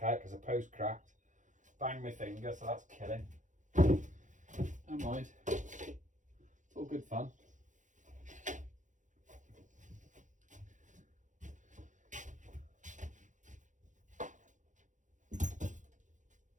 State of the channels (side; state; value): left; late; 0.36 ms